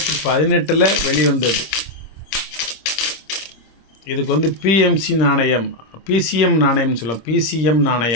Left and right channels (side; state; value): right; late; 26 ms